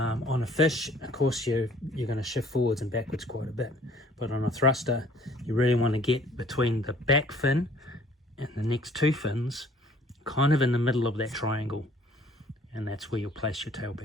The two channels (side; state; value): both; normal; correlation 0.56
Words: a fish, of course, you're going to shift forwards and backwards quite a bit, but on a thruster you really want to get between the back fin and the next two fins, kind of in the middle of that triangle, and that's where you'll place your tail